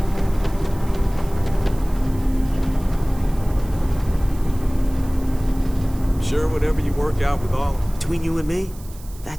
Sure, whatever you work out with all. Between you and me,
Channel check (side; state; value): right; noise; hiss, 21 dB below the sound